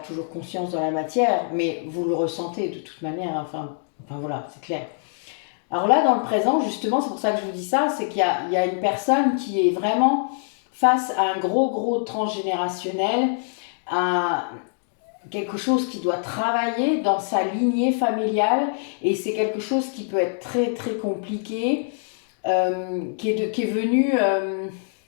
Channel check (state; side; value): silent; right; digital silence